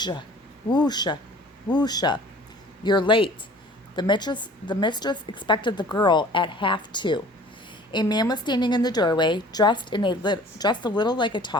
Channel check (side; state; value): both; normal; correlation 0.48